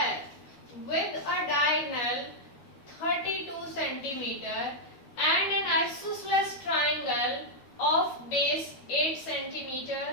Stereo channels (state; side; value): late; right; 12 ms